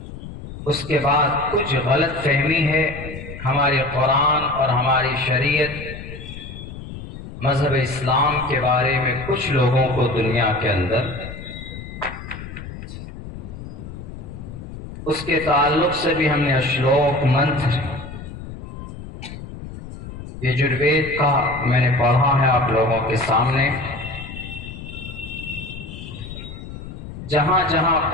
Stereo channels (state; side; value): noise; left; rumble, 11 dB below the sound